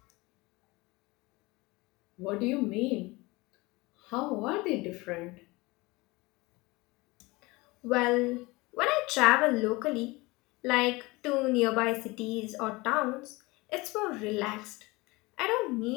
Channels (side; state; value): right; quieter; 23.0 dB